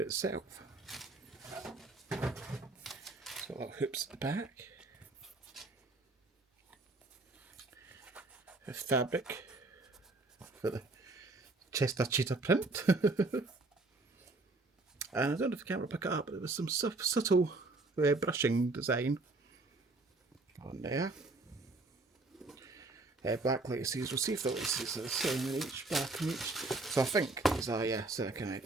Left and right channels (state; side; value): quieter; left; 3.2 dB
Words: So little hoops at the back. A fabric for the Chester cheetah print. And I don't know if the camera will pick it up, but there was some subtle brushing design on there. Black laces, we'll see if the laces are the same in each, black in each. So I think these are, kind of